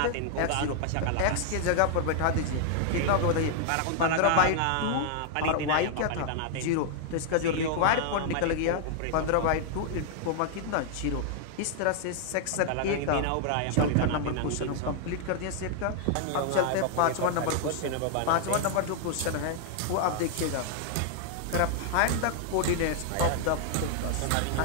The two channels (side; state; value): both; different; correlation 0.00